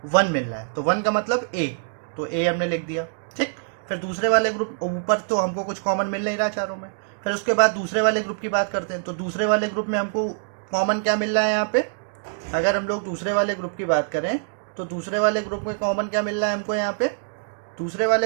1 मिल रहा है। तो 1 का मतलब A, तो A हमने लिख दिया। ठीक, फिर दूसरे वाले ग्रुप ऊपर तो हमको कुछ कॉमन मिल नहीं रहा चारों में। फिर उसके बाद दूसरे वाले ग्रुप की बात करते हैं। तो दूसरे वाले ग्रुप में हमको कॉमन क्या मिल रहा है, यहाँ पे अगर हम लोग दूसरे वाले ग्रुप की बात करें तो दूसरे वाले ग्रुप में कॉमन क्या मिल रहा है हमको, यहाँ पे दूसरे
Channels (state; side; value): silent; left; digital silence